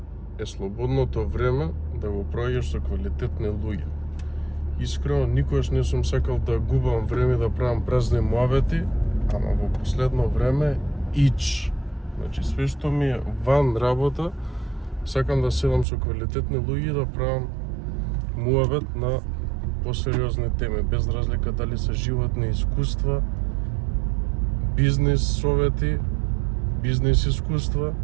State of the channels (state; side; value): drops out; left; at 15.9 s